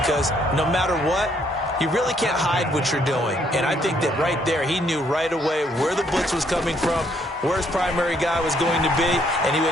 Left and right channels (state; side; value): normal; both; correlation 0.69